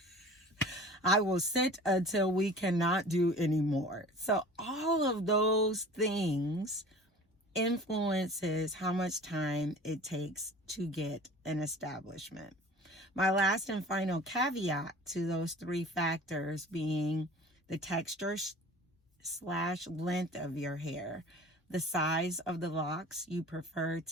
I will sit until we cannot do anymore. So all of those things influences how much time it takes to get an establishment. My last and final caveat to those 3 factors being the texture / length of your hair, the size of the locks you prefer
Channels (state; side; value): normal; both; correlation 0.42